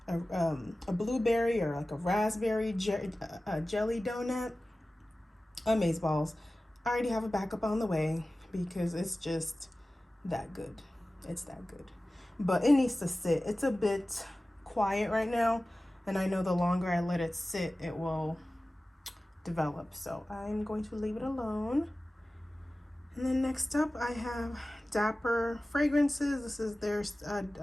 a blueberry or like a raspberry jelly donut. Amazeballs. I already have a backup on the way because it's just that good. It's that good. But it needs to sit. It's a bit quiet right now, and I know the longer I let it sit, it will develop. So I'm going to leave it alone. And then next up, I have Dapper Fragrances. This is their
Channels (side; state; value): both; normal; correlation 0.96